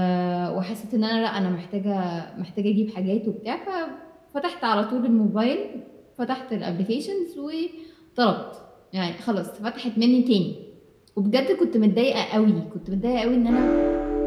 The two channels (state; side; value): identical; both; correlation 1.00